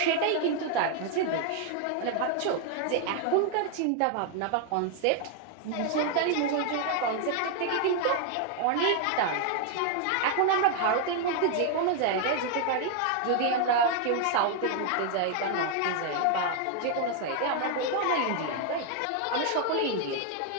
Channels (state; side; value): different; both; correlation 0.00